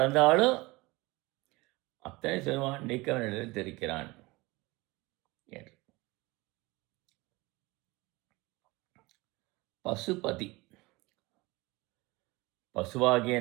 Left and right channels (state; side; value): quieter; left; 22.6 dB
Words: அத்தனை சிறுமான் நீக்கவனிடம் தெரிக்கிறான் என்று. பசுபதி, பசுவாகிய